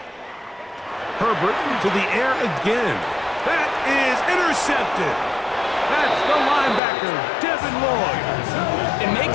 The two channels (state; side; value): drops out; right; at 6.8 s